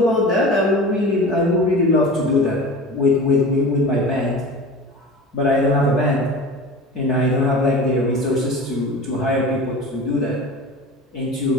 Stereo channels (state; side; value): normal; both; correlation 0.35